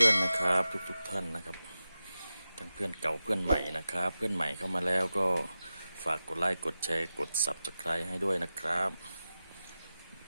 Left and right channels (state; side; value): inverted; both; correlation -0.93